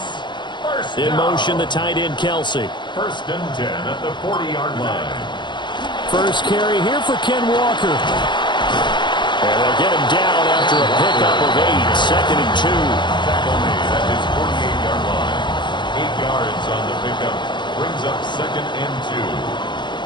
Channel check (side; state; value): right; late; 0.22 ms